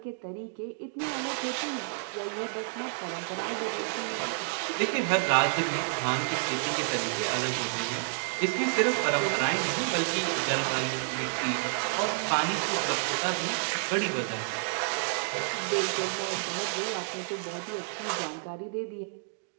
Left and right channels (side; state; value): left; silent; digital silence